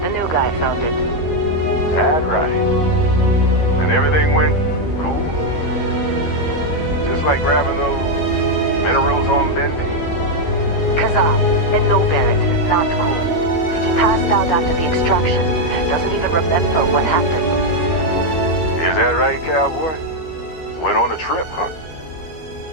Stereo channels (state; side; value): late; right; 13 ms